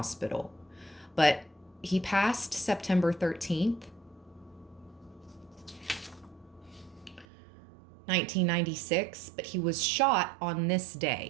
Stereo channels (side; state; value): left; drops out; at 7.2 s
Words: but he passed September 13th, 1996, but he was shot on this